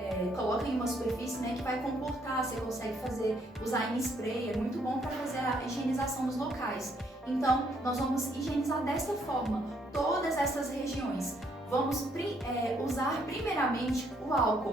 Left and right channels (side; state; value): both; normal; correlation 0.70